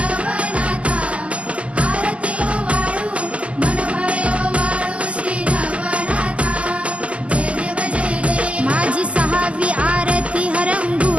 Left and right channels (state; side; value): late; left; 0.060 ms